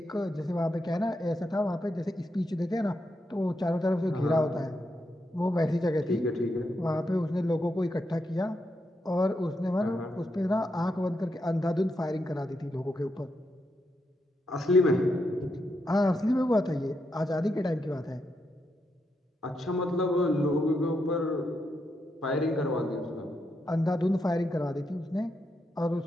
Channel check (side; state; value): both; normal; correlation 0.83